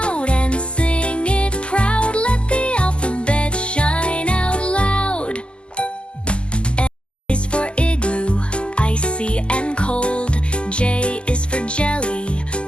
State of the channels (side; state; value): right; late; 0.051 ms